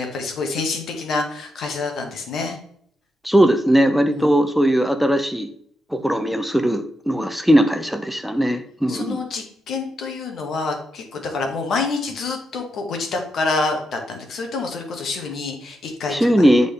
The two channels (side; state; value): both; normal; correlation 0.86